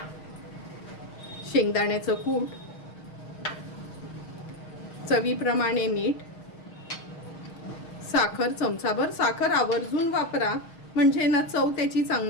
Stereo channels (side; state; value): right; late; 6.4 ms